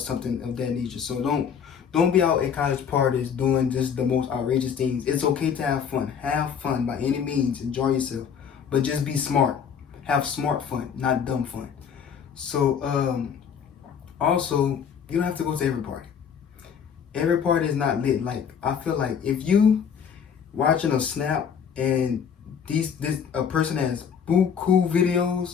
of that nature. So don't be out at college parties doing just the most outrageous things. It's okay to have fun. Have fun by any means. Enjoy yourself, but just be smart. Have smart fun, not dumb fun. So also, you don't have to go to every party. Every party is not lit. Like, I feel like if you watching a snap and a person has cool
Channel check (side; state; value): right; quieter; 7.3 dB